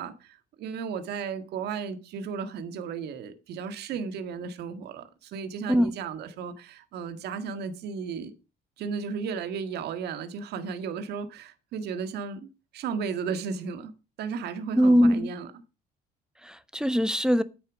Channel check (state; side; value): normal; both; correlation 0.79